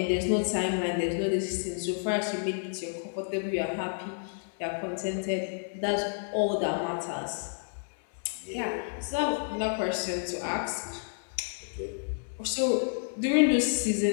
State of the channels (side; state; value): right; silent; 58 dB below the other